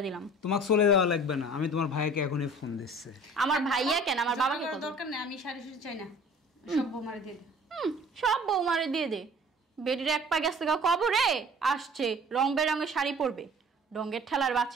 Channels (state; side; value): normal; both; correlation 0.48